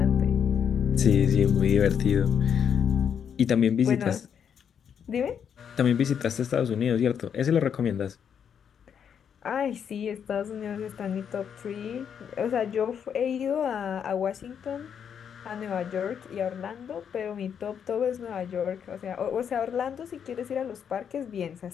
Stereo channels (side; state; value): right; quieter; 7.9 dB